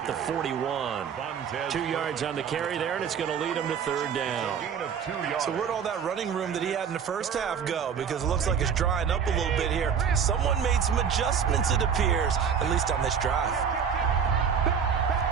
the 41. 2 yards on the carry there, and it's going to lead him to 3rd down. So where'd all that running room that he had in the first half go? Because it looks like it's drying up a little bit here. Someone made some adjustments, it appears, at least on this drive.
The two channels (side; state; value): left; quieter; 7.2 dB